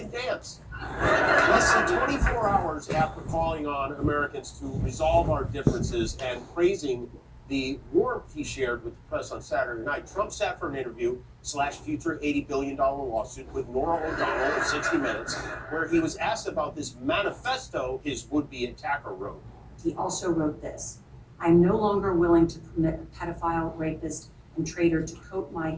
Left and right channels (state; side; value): identical; both; correlation 1.00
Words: dance. Less than 24 hours after calling on Americans to resolve our differences and praising the warmth he shared with the press on Saturday night, Trump sat for an interview / future $80 billion lawsuit with Norah O'Donnell of 60 Minutes, where he was asked about this manifesto his would-be attacker wrote. He also wrote this: "I'm no longer willing to permit a pedophile, rapist, and traitor to coat my